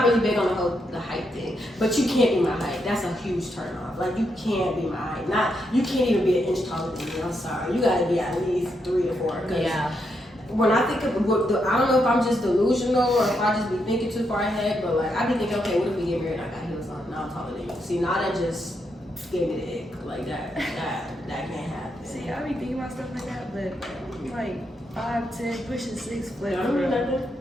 really big on the height thing, but you can't be my height. That's a huge turn off. Like you can't be my height. You can't even be an inch taller than me. I'm sorry. You gotta be at least 3 to 4. Yeah. When I think of I don't know if I'm just delusional or if I just be thinking too far ahead, but like I be thinking, okay, what if we get married? I got heels on. Now I'm taller than you. See, now that just gave me the ick. Like that can't happen. See, I be thinking about stuff like that, but I'm like 5'10", pushing 6 foot. I don't know nothing.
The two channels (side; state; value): both; normal; correlation 0.81